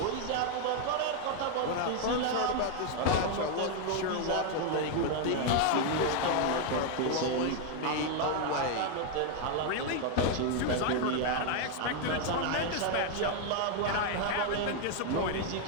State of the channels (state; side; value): different; both; correlation 0.01